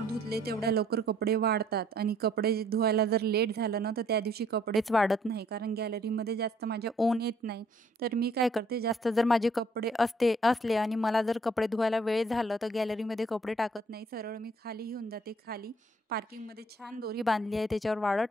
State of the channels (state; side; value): normal; both; correlation 0.62